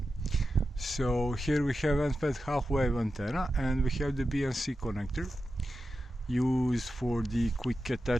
So here we have unplanned half-wave antenna, and we have the BNC connector used for the quick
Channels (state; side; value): normal; both; correlation 0.91